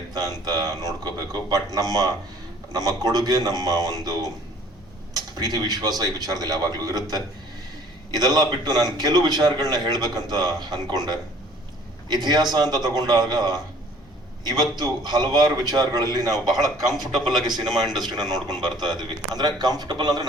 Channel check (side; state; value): both; normal; correlation 0.54